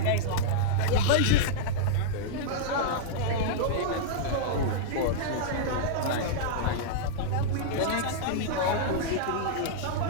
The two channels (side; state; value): both; different; correlation -0.02